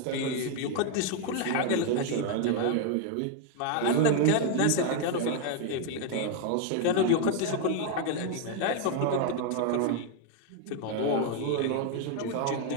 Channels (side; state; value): both; different; correlation 0.00